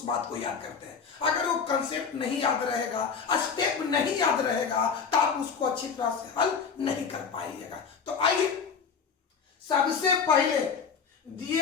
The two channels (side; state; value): right; quieter; 6.0 dB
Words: बात को याद करते हैं। अगर वो कंसेप्ट नहीं याद रहेगा, स्टेप नहीं याद रहेगा तो आप उसको अच्छी तरह से हल नहीं कर पाइएगा। तो आइए सबसे पहले